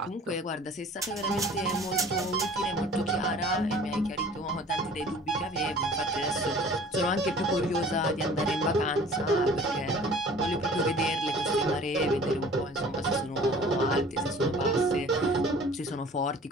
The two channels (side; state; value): both; normal; correlation 0.48